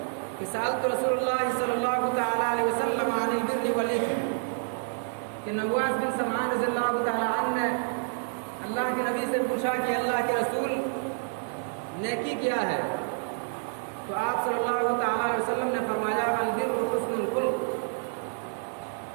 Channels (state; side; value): silent; left; 59 dB below the other